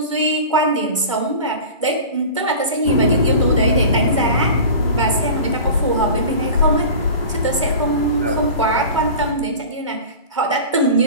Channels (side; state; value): both; inverted; correlation -0.36